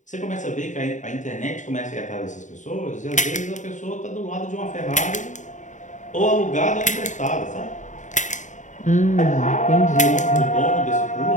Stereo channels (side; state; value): right; late; 0.36 ms